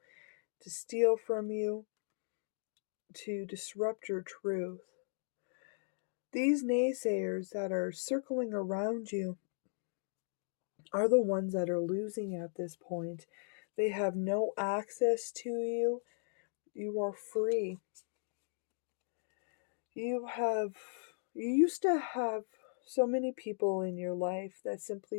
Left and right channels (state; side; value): silent; right; digital silence